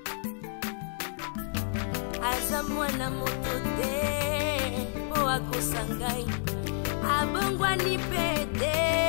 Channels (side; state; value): right; silent; 55 dB below the other